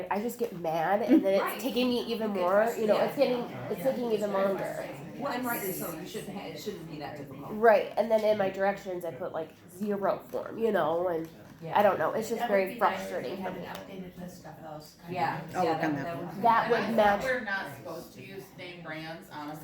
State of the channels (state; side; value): identical; both; correlation 1.00